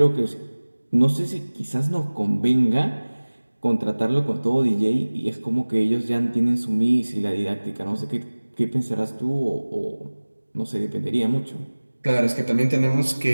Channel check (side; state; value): both; inverted; correlation -1.00